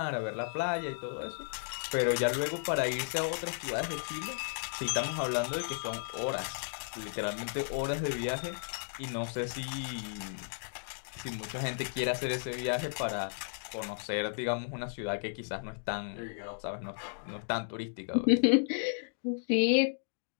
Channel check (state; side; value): silent; right; digital silence